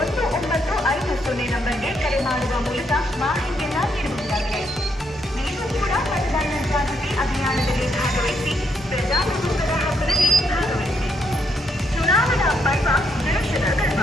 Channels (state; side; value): normal; both; correlation 0.75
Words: ನಂಬರ್ಗೆ ಕರೆ ಮಾಡುವ ಮೂಲಕ ಮಾಹಿತಿಯನ್ನ ನೀಡಬಹುದಾಗಿದೆ. ನೀವು ಕೂಡ ಮತದಾನ ಜಾಗೃತಿ ಅಭಿಯಾನದಲ್ಲಿ ಭಾಗವಹಿಸಿ ಪ್ರಜಾಪ್ರಭುತ್ವದ ಹಕ್ಕಲ್ಲಿ ಭಾಗವಹಿಸಿ.